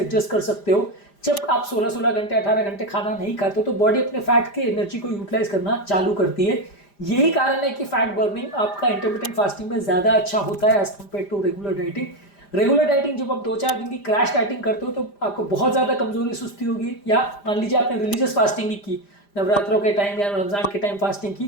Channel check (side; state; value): right; late; 5.0 ms